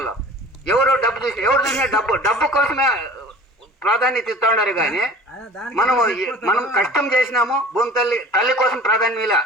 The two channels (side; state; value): both; normal; correlation 0.43